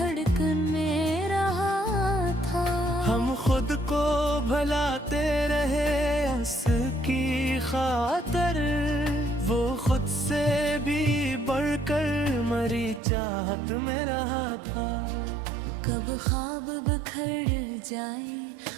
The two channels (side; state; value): left; drops out; at 13.0 s